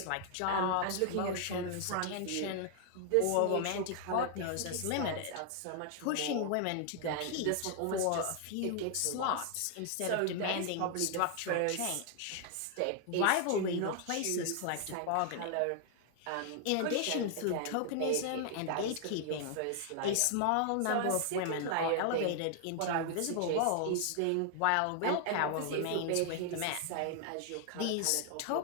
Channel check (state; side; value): different; both; correlation 0.00